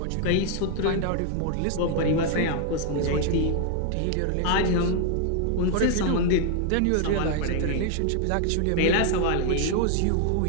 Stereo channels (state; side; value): different; both; correlation 0.00